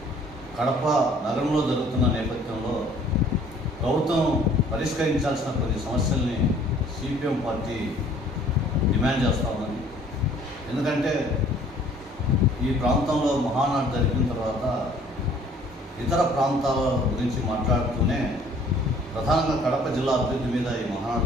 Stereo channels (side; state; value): both; normal; correlation 0.56